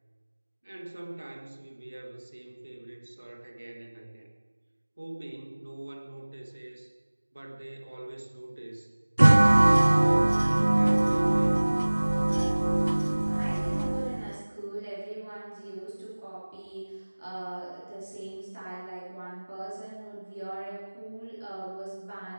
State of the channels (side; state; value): both; inverted; correlation -1.00